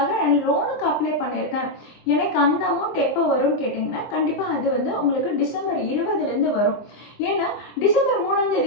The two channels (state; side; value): late; right; 23 ms